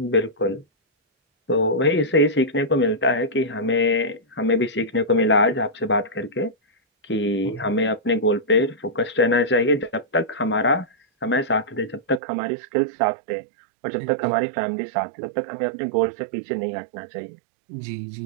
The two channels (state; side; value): drops out; left; at 12.2 s